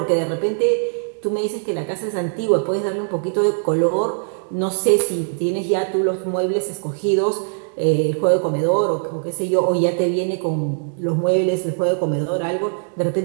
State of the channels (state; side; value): silent; left; 65 dB below the other